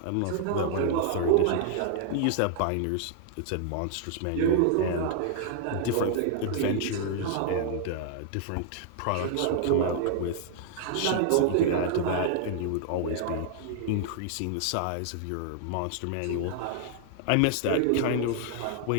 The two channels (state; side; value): different; both; correlation -0.01